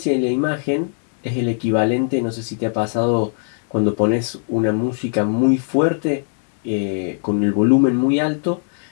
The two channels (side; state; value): right; silent; 66 dB below the other